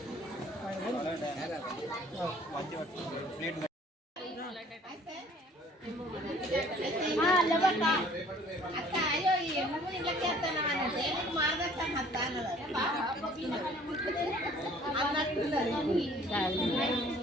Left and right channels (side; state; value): both; normal; correlation 0.55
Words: అక్క అయ్యో ఎందుకు ఇళ్ళకి వస్తున్నామని మార్గస్తాను అత్త